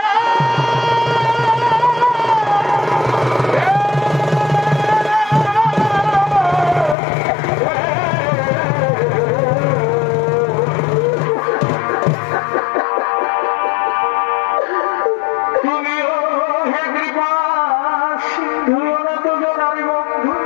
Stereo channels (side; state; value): right; drops out; at 7.0 s